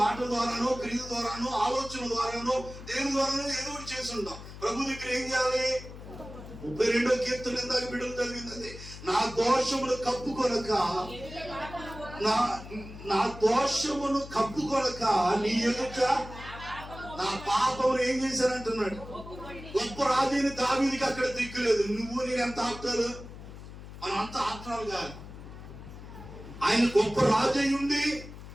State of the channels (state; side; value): noise; left; hum, 14 dB below the sound